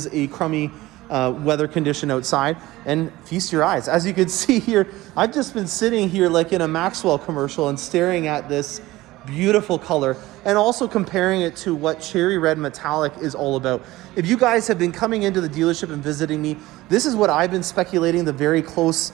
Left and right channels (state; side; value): quieter; left; 18.0 dB